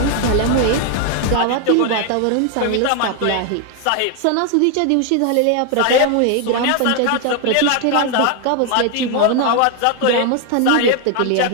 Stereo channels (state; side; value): different; both; correlation 0.01